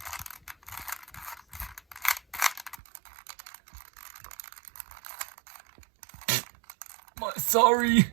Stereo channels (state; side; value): drops out; left; at 2.8 s